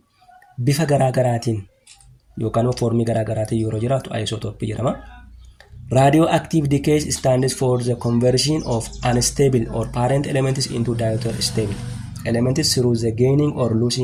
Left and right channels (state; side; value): identical; both; correlation 1.00